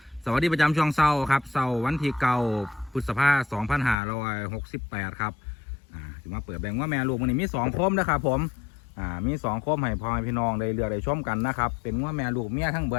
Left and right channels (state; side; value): drops out; right; at 4.0 s